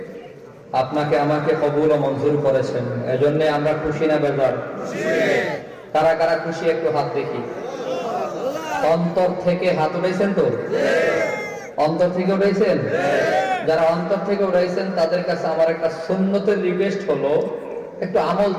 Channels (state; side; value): identical; both; correlation 1.00